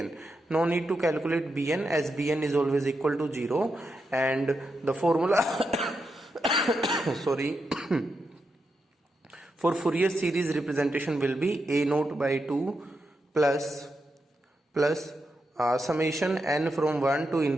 No need to calculate bn, as bn is always equal to 0, and the formula sorry for Fourier series representation will be a naught by 2 plus summation n from 1 to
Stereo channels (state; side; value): normal; both; correlation 0.86